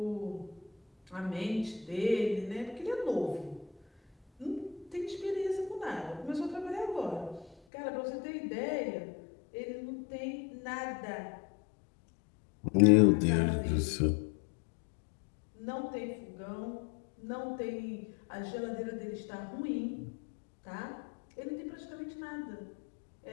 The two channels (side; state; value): right; drops out; at 7.6 s